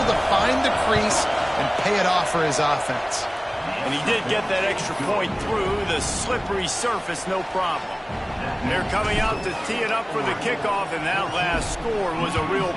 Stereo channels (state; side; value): identical; both; correlation 1.00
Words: to find the crease and pay it off for his offense. And he did get that extra point through the slippery surface, no problem. They're coming out to tee it up for the kickoff, and that last score was a real